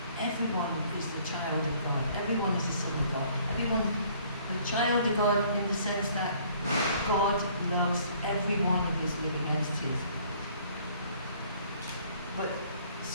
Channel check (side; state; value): both; inverted; correlation -0.58